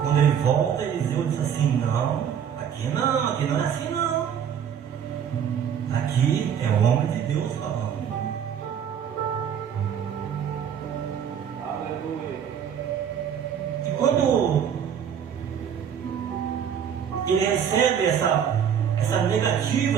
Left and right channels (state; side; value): quieter; left; 8.4 dB